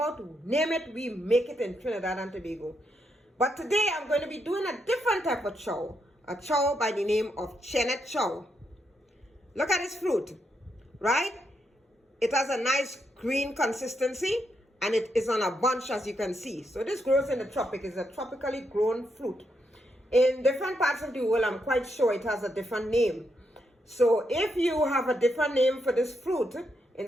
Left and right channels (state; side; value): normal; both; correlation 0.80